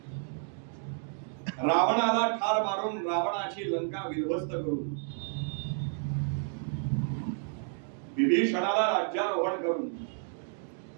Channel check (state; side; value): silent; left; 57 dB below the other